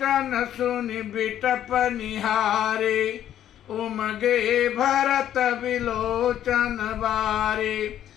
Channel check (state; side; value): quieter; right; 11.1 dB